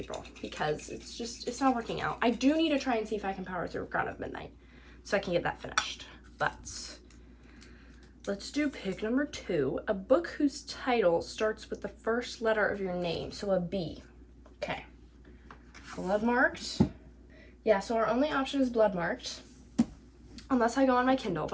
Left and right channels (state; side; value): identical; both; correlation 1.00